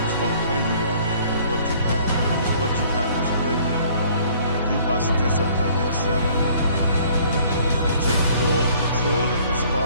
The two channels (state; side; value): inverted; both; correlation -0.57